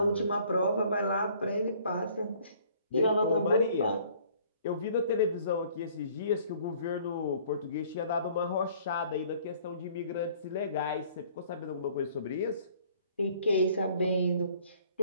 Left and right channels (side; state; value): both; inverted; correlation -0.57